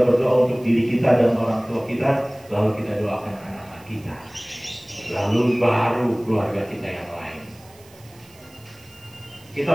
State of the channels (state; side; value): noise; right; hiss, 25 dB below the sound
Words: berdoa untuk diri kita dan orang tua kita, lalu kita doakan anak-anak kita. Lalu baru keluarga kita yang lain.